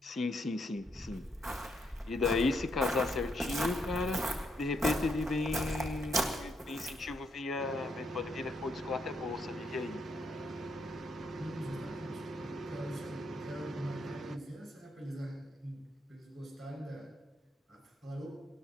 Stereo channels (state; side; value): normal; both; correlation 0.77